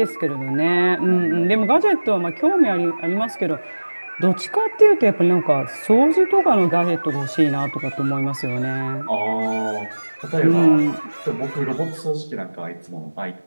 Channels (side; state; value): both; inverted; correlation -1.00